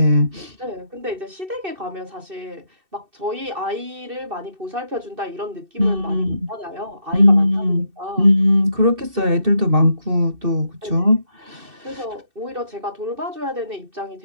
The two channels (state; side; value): late; left; 2.6 ms